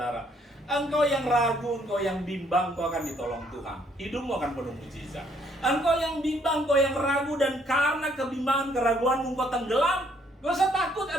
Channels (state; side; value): normal; both; correlation 0.67